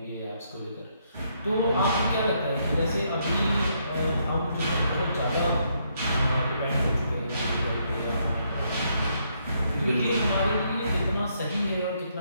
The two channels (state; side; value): inverted; both; correlation -0.74